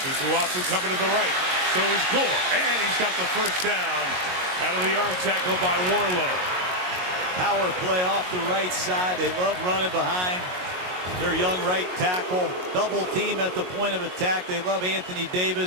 Tukuafu coming to the right. So is Gore. And he's got the first down out of the arm tackle by Warlow. Power play off the right side. They love running behind their young right tackle. Double team at the point of attack. They love Anthony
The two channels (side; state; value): left; late; 22 ms